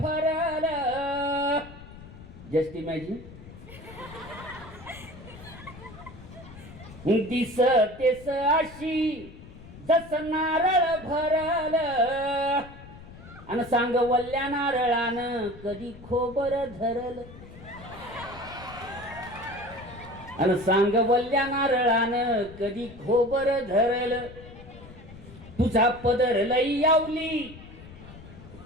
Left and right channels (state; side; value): noise; left; rumble, 17 dB below the sound